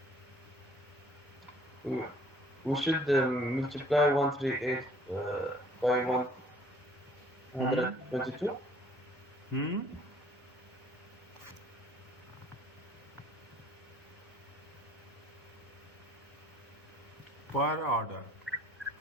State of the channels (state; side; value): normal; both; correlation 0.57